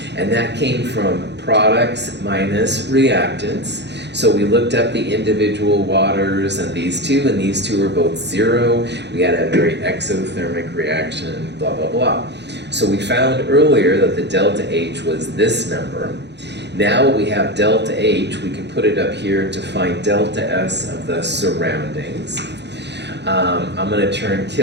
And that came from products minus reactants. So we looked up the individual waters and these two are both 0. We had a very exothermic reaction, blah, blah, blah. So we found earlier that the delta H was this number. Now we have delta H, we can put it up here to find delta S of the surroundings. I'm going to turn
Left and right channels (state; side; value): late; left; 0.50 ms